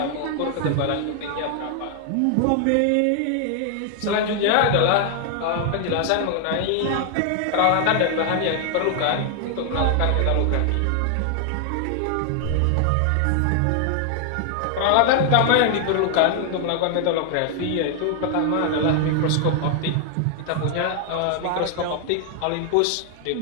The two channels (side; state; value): both; different; correlation 0.00